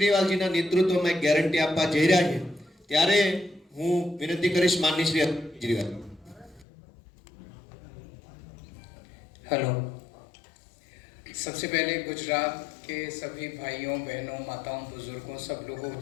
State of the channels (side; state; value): right; drops out; at 6.7 s